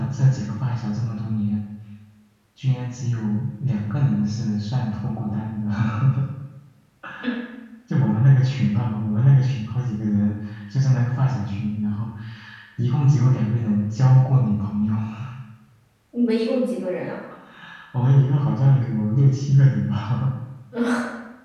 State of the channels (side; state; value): both; identical; correlation 1.00